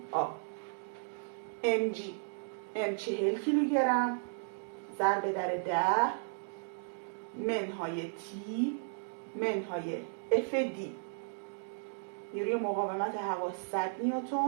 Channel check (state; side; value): silent; left; digital silence